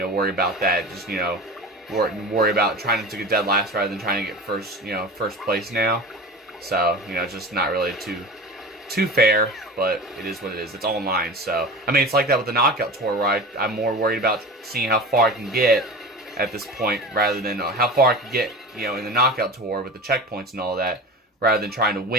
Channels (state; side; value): normal; both; correlation 0.32